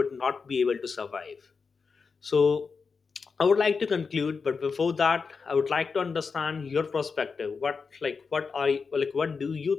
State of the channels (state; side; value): quieter; right; 5.1 dB